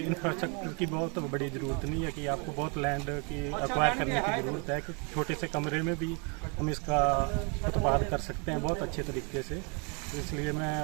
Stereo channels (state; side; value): quieter; left; 34.9 dB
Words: इंफ्रास्ट्रक्चर की बहुत बड़ी ज़रूरत नहीं है कि आपको बहुत लैंड की एक्वायर करने की ज़रूरत है, कि छोटे से कमरे में भी हम इसका उत्पाद कर सकते हैं बहुत अच्छे तरीके से। इसलिए मैं